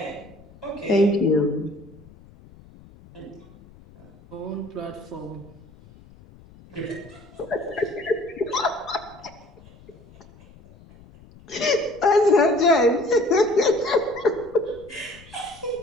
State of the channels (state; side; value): noise; left; rumble, 23 dB below the sound